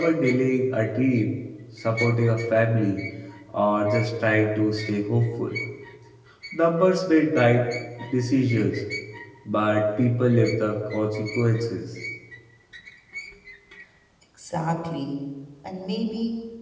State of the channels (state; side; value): identical; both; correlation 1.00